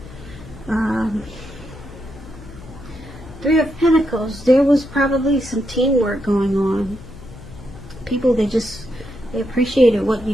Three of Pentacles, there was probably some teamwork going on. People, they appreciated what you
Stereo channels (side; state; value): left; noise; hum, 16 dB below the sound